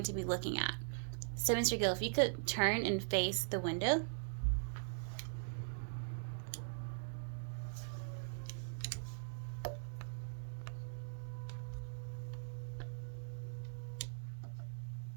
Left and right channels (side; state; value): left; silent; digital silence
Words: to be looking at. So Mr. Gill, if you could turn and face the window.